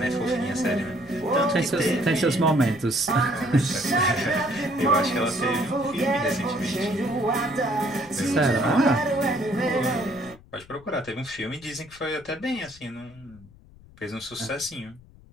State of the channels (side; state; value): left; noise; rumble, 23 dB below the sound